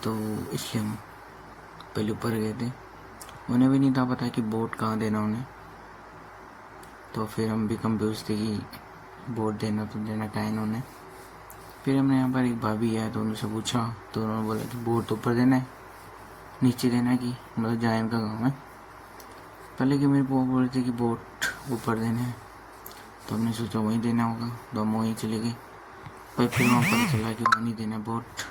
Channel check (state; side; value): identical; both; correlation 1.00